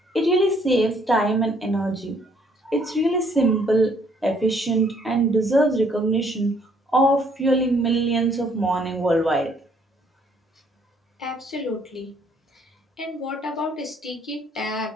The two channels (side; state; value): both; normal; correlation 0.65